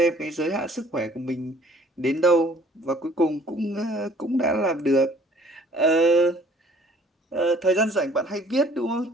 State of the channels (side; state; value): both; normal; correlation 0.56